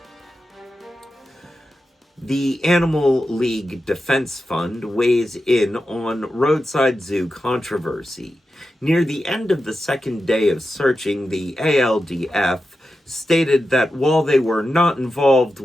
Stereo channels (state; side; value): normal; both; correlation 0.90